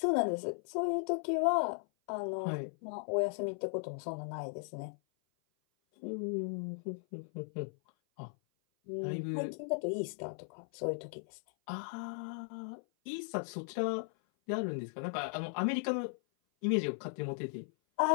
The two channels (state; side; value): silent; right; 53 dB below the other